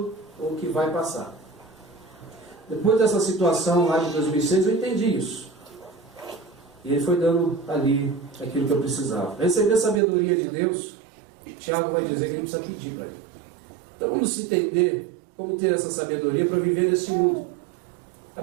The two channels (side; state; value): left; drops out; at 10.0 s